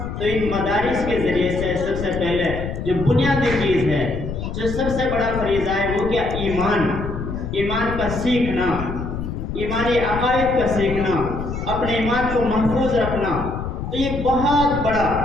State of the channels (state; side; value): noise; left; rumble, 6 dB below the sound